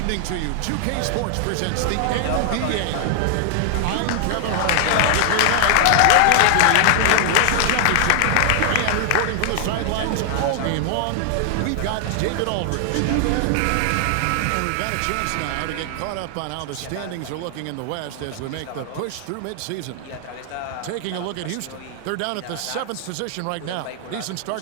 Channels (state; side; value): different; both; correlation 0.00